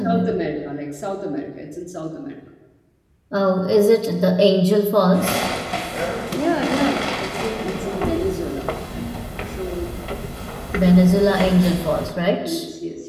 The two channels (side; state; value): both; identical; correlation 1.00